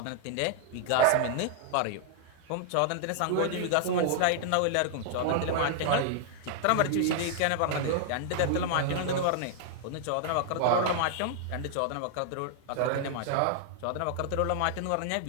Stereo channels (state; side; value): different; both; correlation -0.01